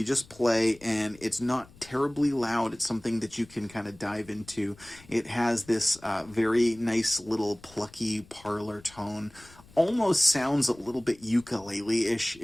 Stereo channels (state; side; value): noise; left; rumble, 24 dB below the sound